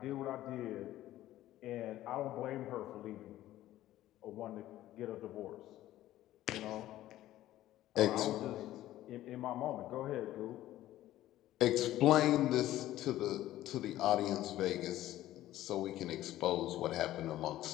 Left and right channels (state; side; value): quieter; right; 14.4 dB